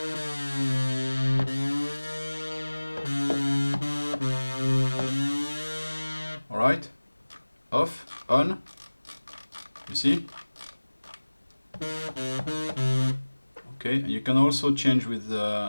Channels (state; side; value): inverted; both; correlation -1.00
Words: Alright, off, on, you see? Okay, and you can also change with